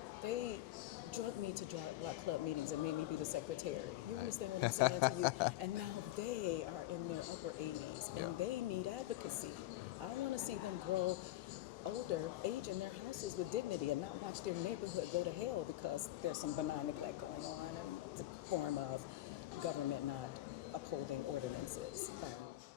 They drugged me to block club meetings and made me be the secretary. You understand what I'm saying to you? And now they are in their upper 80s and they need advocacy. I want to see them grow older, age in their houses with dignity and not watch their neighborhood go to hell because there's some benign neglect going on in the form of government not upholding ordinances.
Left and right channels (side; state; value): right; quieter; 15.5 dB